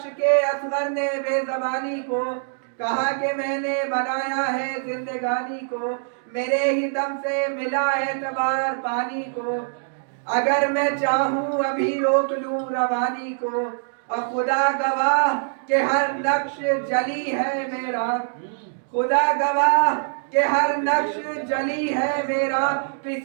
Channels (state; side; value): silent; left; digital silence